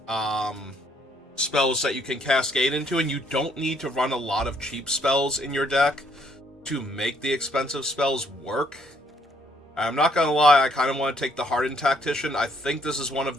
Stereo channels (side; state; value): both; normal; correlation 0.68